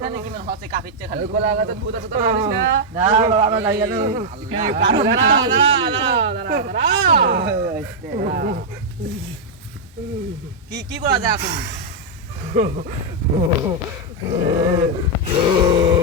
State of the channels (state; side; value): normal; both; correlation -0.03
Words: কি মানে হচ্ছে কাফিচ্ছে খালি। কোলা গাছে ভূত আছে, তোরা জানিস না? না বাবা যাই গেল কি কি করা যায় এখন?